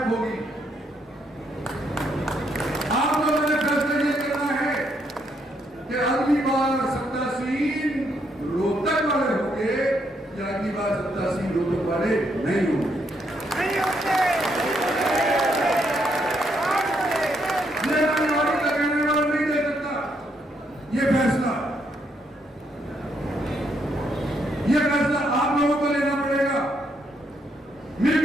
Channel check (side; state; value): both; normal; correlation 0.75